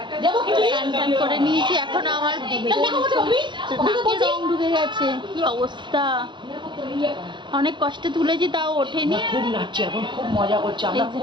স্নান টান করে নিয়েছি, এখন আমার নাকে রং ঢুকে গেছে, কি অবস্থা। অনেক কষ্টে তুলেছি তাও ওঠেনি। খুব নাচছি এখন, খুব মজা করছি, আমরা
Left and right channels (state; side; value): late; left; 0.23 ms